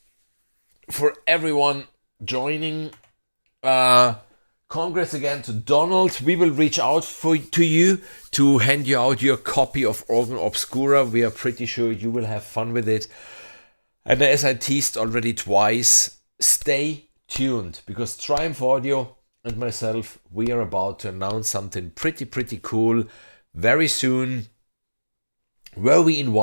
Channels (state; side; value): inverted; both; correlation -1.00